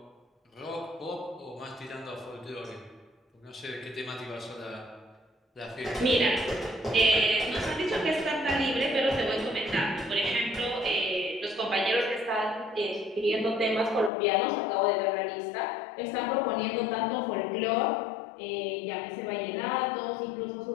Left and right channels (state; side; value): drops out; right; at 14.1 s